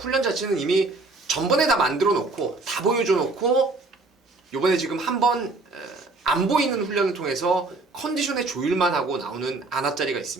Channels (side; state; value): left; quieter; 3.4 dB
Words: 자체는 이미 전번에 다 만들어 놓고 다 보여줘 놓고 요번에 지금 한번 안 보이는 훈련을 통해서 컨디션의 조율만 하고 나오는 안압자리가